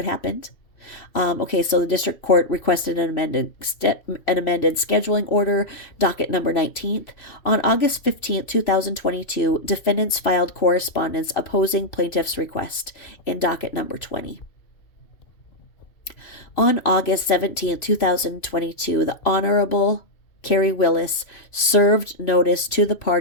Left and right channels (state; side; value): late; right; 2.7 ms